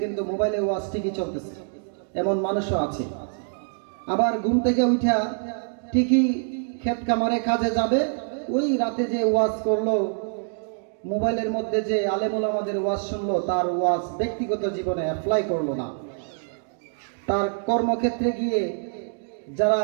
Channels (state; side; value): silent; left; 62 dB below the other